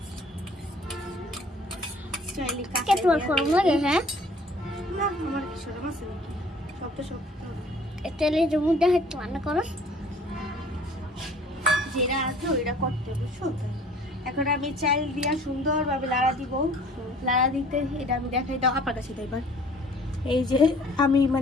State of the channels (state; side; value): normal; both; correlation 0.53